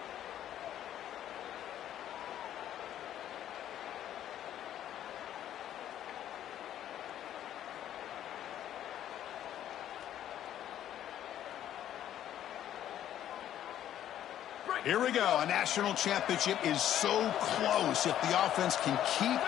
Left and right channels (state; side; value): quieter; right; 11.3 dB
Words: Here we go. A national championship is so close if the offense can keep